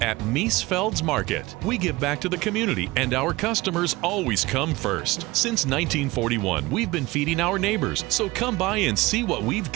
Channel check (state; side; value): quieter; left; 20.8 dB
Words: At Miesfeld's Market, we give back to the community, and our customers always come first. Since 1941, we've been feeding our neighbors, so come by and see what we've